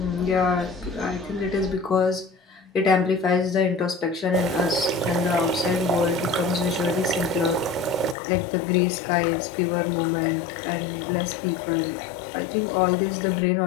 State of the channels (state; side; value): drops out; right; at 8.2 s